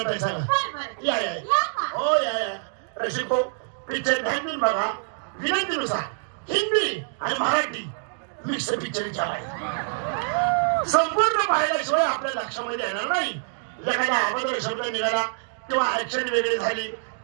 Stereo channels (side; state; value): left; silent; digital silence